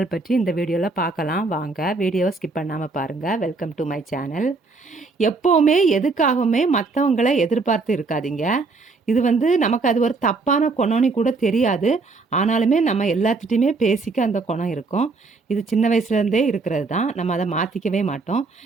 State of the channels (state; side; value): quieter; left; 3.9 dB